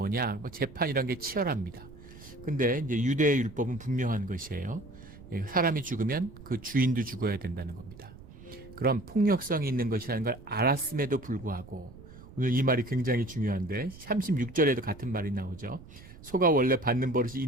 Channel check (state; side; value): noise; right; rumble, 18 dB below the sound